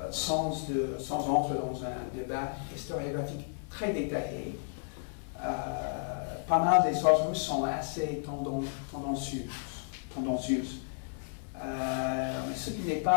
sans entrer dans un débat historiographique très détaillé. Pas mal des sources russes sont assez tendancieuses. Mais ce qui n'est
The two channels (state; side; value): silent; right; 56 dB below the other